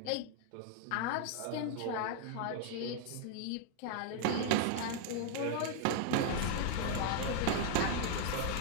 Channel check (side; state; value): both; different; correlation 0.00